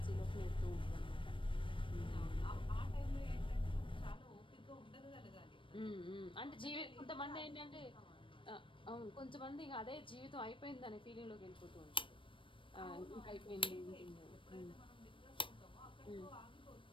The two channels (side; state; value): right; late; 0.25 ms